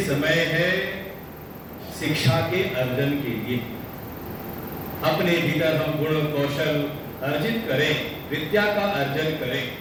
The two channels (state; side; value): identical; both; correlation 1.00